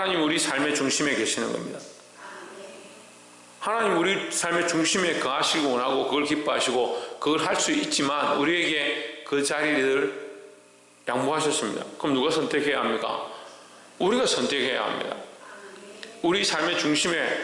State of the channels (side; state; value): both; identical; correlation 1.00